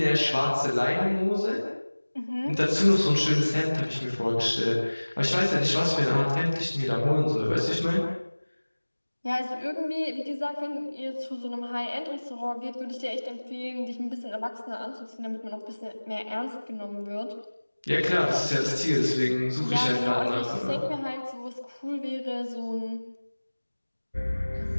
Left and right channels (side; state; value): both; inverted; correlation -1.00